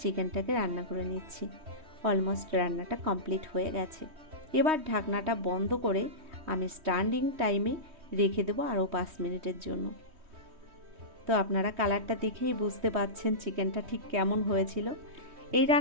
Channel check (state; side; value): late; left; 3.2 ms